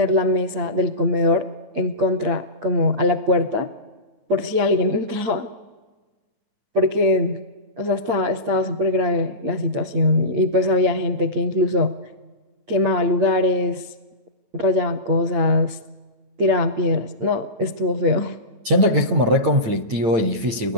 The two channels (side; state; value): left; late; 9.0 ms